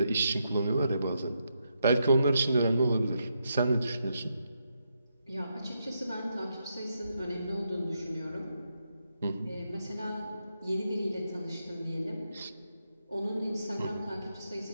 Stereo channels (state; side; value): inverted; both; correlation -0.82